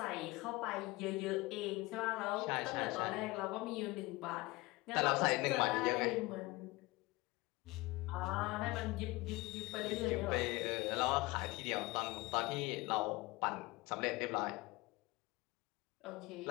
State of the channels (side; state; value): right; quieter; 22.0 dB